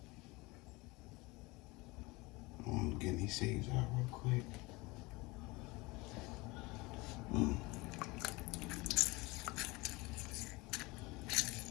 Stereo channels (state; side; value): quieter; right; 23.6 dB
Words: I'm getting these seeds out real quick.